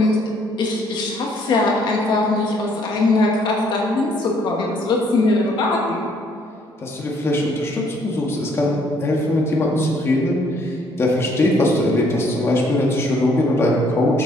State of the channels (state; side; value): normal; both; correlation 0.65